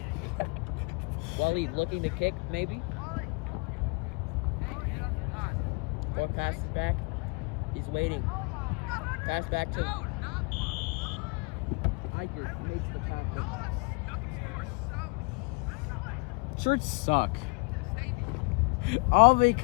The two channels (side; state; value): right; quieter; 30.5 dB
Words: Waleed looking to kick, maybe? Or passes back. He's waiting. Pass back to Iker. Makes the tackle. Shirts suck. All